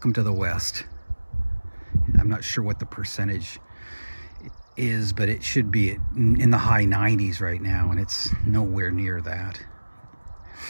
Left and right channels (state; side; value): inverted; both; correlation -1.00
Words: to the West. I'm not sure what the percentage is, but it should be in the high 90s right now, and it's nowhere near that.